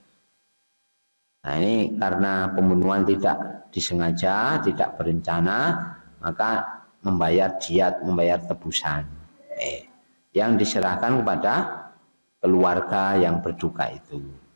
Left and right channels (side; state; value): both; inverted; correlation -1.00